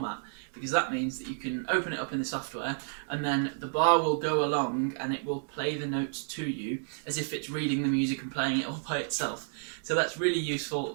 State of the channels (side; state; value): left; silent; digital silence